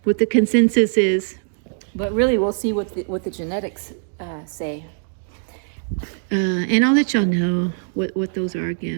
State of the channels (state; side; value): silent; left; 65 dB below the other